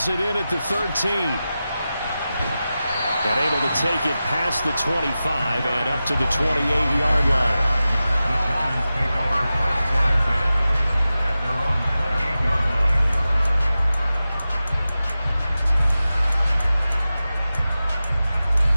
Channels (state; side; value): inverted; both; correlation -0.94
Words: it in at the 13. And able to take it past the 25 and up to the 28-yard line.